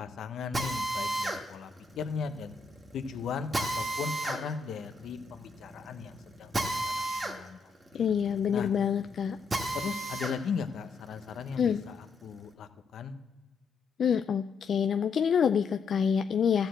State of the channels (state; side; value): quieter; right; 5.0 dB